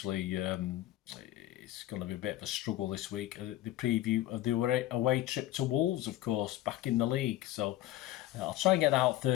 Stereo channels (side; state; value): right; quieter; 14.8 dB